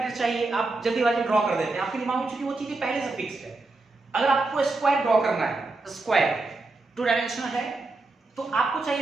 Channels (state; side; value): quieter; left; 3.3 dB